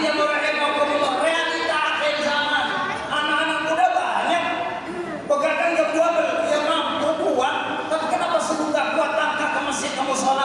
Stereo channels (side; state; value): both; identical; correlation 1.00